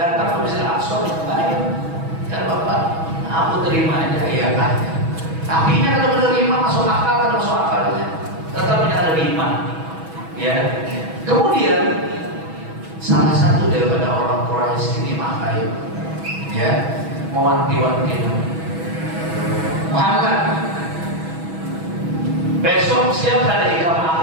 ke Masjidil Aqsa. Ya bapak, aku terima aja ya kan. Tapi ini kalau menerima masuk akal atau masuk akalnya, tetap ada iman. Ya. Kemudian salah satu daripada orang Quraisy ini makai, ya, mewanti-wanti Muhammad. Besok siap ada ikan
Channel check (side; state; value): left; late; 6.2 ms